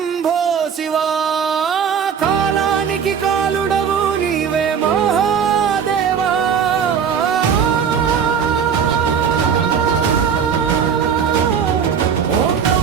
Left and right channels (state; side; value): quieter; left; 7.2 dB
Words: శివా. కాలానికి కాలుడవు నీవే మహాదేవా. ఓం